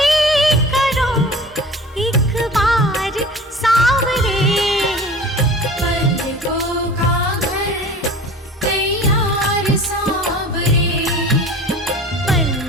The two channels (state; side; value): normal; both; correlation 0.40